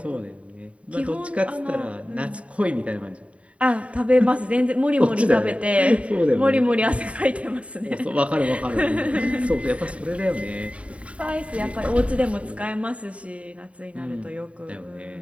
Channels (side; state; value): left; late; 0.064 ms